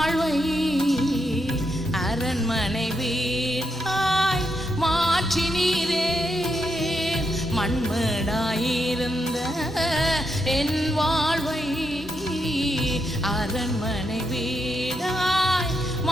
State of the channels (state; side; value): normal; both; correlation 0.82